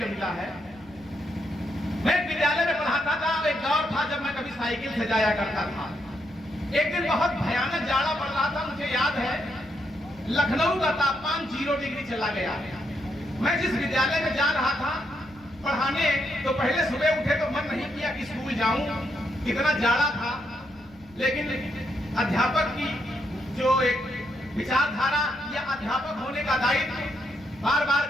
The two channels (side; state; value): left; noise; rumble, 26 dB below the sound